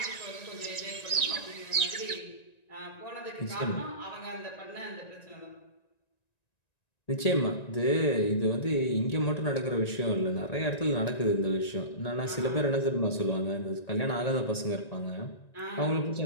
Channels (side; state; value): right; late; 1.9 ms